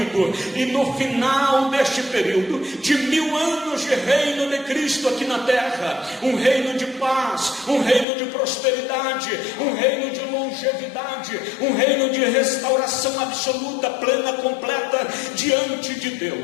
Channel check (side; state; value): right; drops out; at 8.1 s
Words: E no final deste período de 1000 anos de reino de Cristo aqui na terra, um reino de paz, um reino de prosperidade, um reino de longevidade, um reino de restauração absoluta, plena, completa diante de